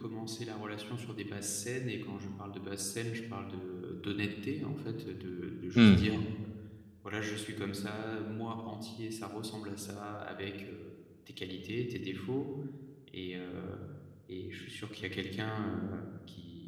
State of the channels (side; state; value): both; identical; correlation 1.00